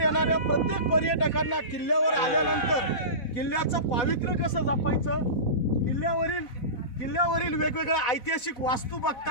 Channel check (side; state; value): right; late; 4.1 ms